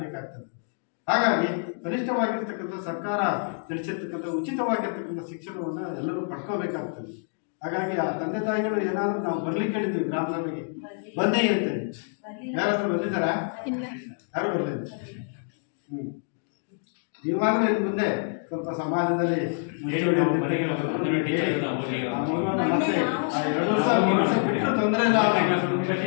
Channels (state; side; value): silent; right; 60 dB below the other